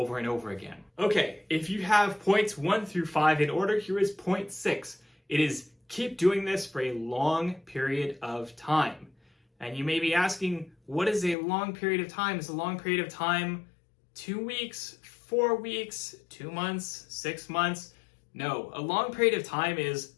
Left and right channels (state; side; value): drops out; right; at 11.4 s